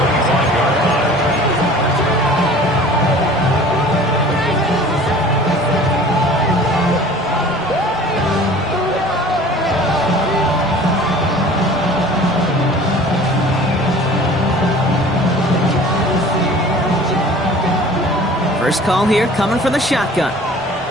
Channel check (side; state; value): both; normal; correlation 0.46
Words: First call here coming from the shotgun.